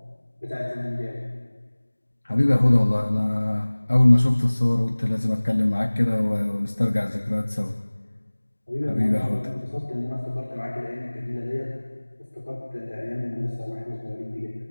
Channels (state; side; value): inverted; both; correlation -1.00